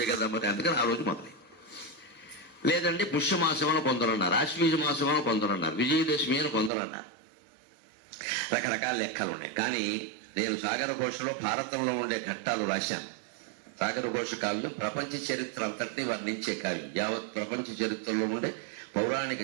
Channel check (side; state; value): left; drops out; at 6.7 s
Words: కదా మరి, అందుకని ఆ రోజు మొదలైంది. లేదండి పుష్యమాసం అని కొందరు అన్నారు, ఆశ్వీజ మాసం అని కొందరు అన్నారు, విజయదశమి అని కొందరు అన్నారు. రకరకాల లెక్కలు ఉన్నాయి. కానీ నేను సాగర ఘోషలో భారతంలో ఉండే ఘట్టాలు రాశాను. సాగర ఘోష కావ్యం ప్రపంచ చరిత్ర అంతటినీ వర్ణించే కావ్యం. యావత్ ప్రపంచ చరిత్రలో ఉండే పౌరాణిక,